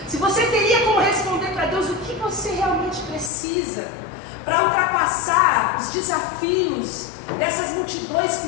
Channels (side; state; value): right; drops out; at 3.3 s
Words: se você teria como responder para Deus o que você realmente precisa para ultrapassar os desafios dessas multidões que